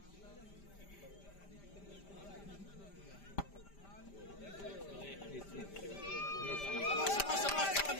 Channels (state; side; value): late; right; 5.1 ms